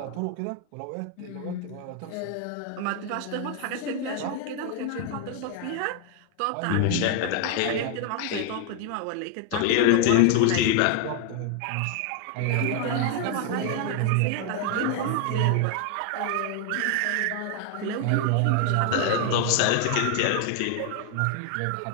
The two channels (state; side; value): different; both; correlation 0.00